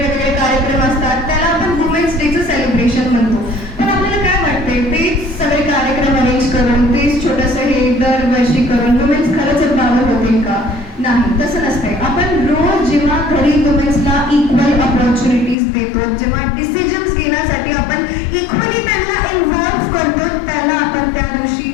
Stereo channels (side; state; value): right; drops out; at 15.6 s